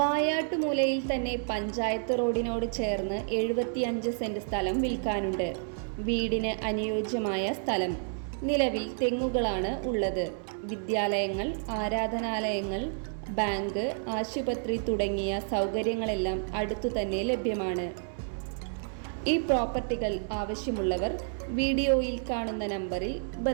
തന്നെ പഞ്ചായത്ത് റോഡിനോട് ചേർന്ന് 75 സെൻറ് സ്ഥലം വിൽക്കാനുണ്ട്. വീടിന് അനുയോജ്യമായ സ്ഥലം. നിലവിൽ തെങ്ങുകളാണ് ഉള്ളത്. വിദ്യാലയങ്ങൾ, ആരാധനാലയങ്ങൾ, ബാങ്ക്, ആശുപത്രി തുടങ്ങിയ സൗകര്യങ്ങളെല്ലാം അടുത്തു തന്നെ ലഭ്യമാണ്. ഈ പ്രോപ്പർട്ടികൾ ആവശ്യമുള്ളവർ വീഡിയോയിൽ കാണുന്ന നമ്പറിൽ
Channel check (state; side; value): silent; left; 58 dB below the other